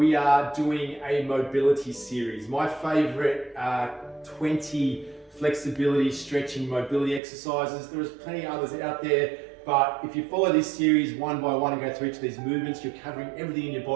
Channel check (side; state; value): left; drops out; at 7.2 s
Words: are doing a mobility series. My favorite 20 flexibility, stretching, mobility exercises. There's plenty of others out there, but if you follow this series one by one and go through each of these movements, you're covering everything in your